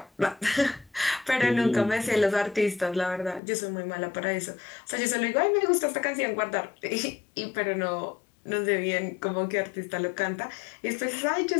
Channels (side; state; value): right; drops out; at 3.4 s